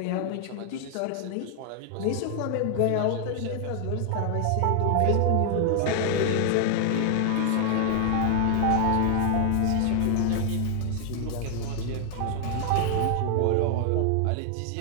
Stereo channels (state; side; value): different; both; correlation 0.00